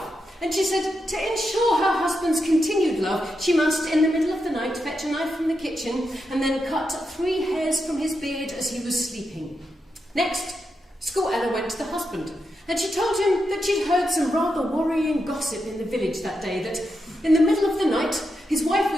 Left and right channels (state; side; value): normal; both; correlation 0.86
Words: and she said to ensure her husband's continued love, she must, in the middle of the night, fetch a knife from the kitchen and then cut 3 hairs from his beard as he was sleeping. Next, Smörgåsballad went to the husband, and she told him that she'd heard some rather worrying gossip in the village that day, that in the middle of the night, his wife